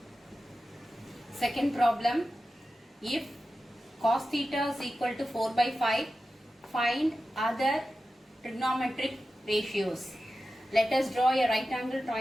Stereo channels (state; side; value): normal; both; correlation 0.93